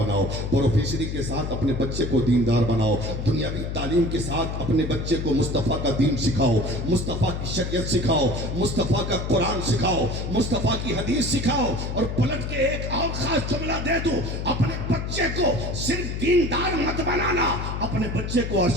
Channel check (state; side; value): noise; left; hum, 4 dB below the sound